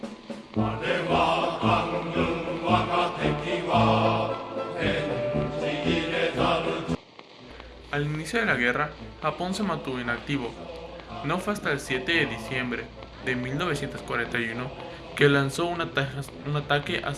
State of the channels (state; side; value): identical; both; correlation 1.00